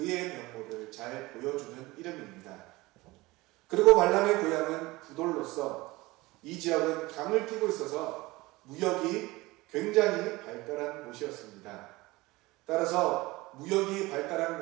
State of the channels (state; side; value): quieter; left; 20.9 dB